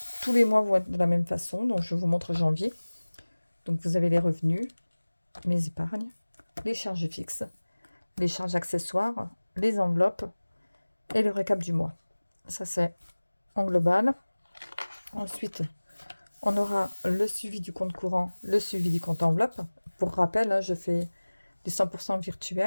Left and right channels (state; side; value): inverted; both; correlation -1.00